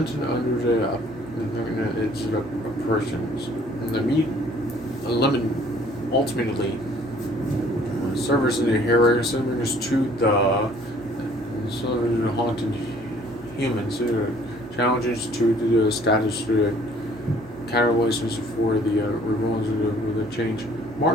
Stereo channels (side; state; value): right; noise; hum, 21 dB below the sound